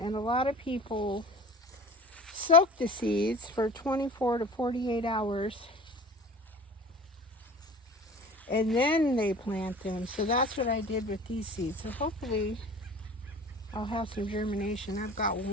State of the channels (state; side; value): normal; both; correlation 0.41